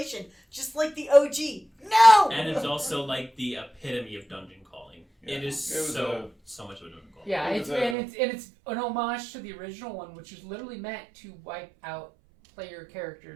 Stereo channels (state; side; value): drops out; left; at 8.0 s